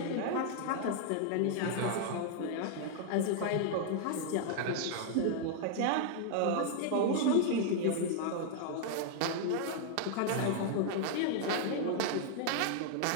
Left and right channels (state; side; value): different; both; correlation 0.00